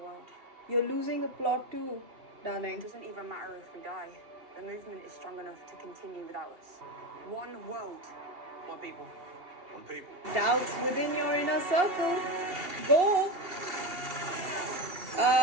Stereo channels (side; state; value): left; late; 2.8 ms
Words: You're losing the plot too, darling. It doesn't even matter if we die. The movement is strong enough to continue without us. One world. One people. One people. Doubts within your inner circle. Go.